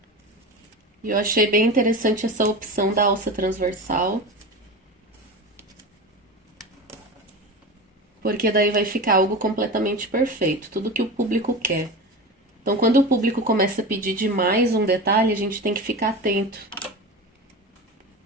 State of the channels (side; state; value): both; normal; correlation 0.28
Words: E eu achei bem interessante essa opção da alça transversal. Porque daí vai ficar algo completamente perfeito, tudo que o público quer. Então, quando o público começa a pedir demais um detalhe, a gente tem que ficar atento.